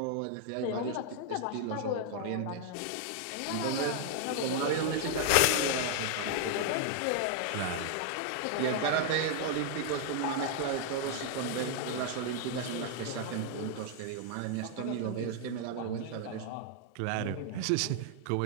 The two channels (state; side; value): different; both; correlation 0.00